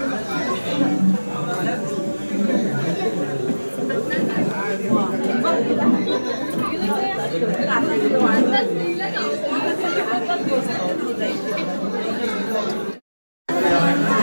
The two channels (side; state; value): both; inverted; correlation -1.00